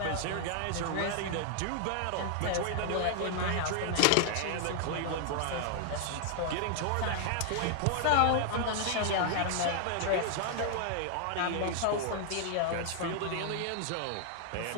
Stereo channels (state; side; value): different; both; correlation 0.00